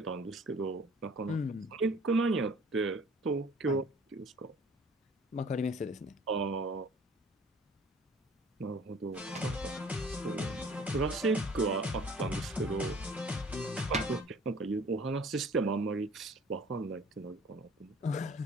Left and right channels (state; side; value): normal; both; correlation 0.51